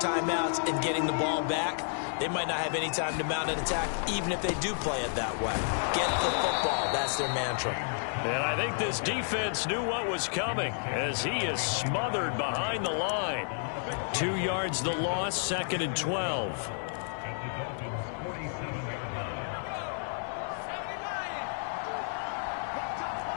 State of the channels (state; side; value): silent; right; 57 dB below the other